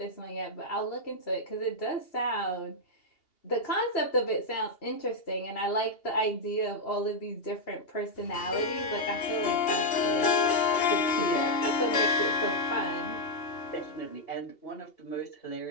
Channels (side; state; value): right; late; 2.8 ms